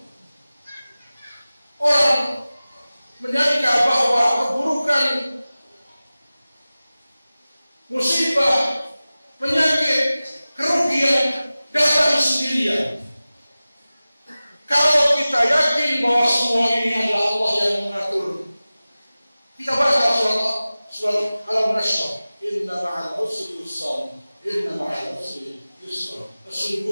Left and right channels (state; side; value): inverted; both; correlation -0.97